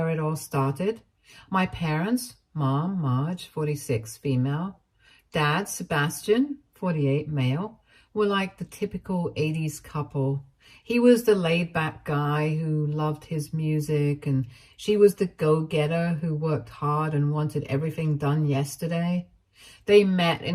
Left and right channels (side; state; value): both; identical; correlation 1.00